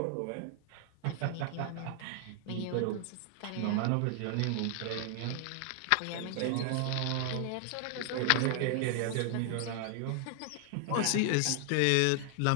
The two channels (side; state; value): both; different; correlation 0.00